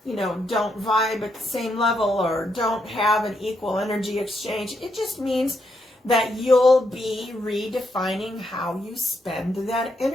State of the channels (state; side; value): normal; both; correlation 0.79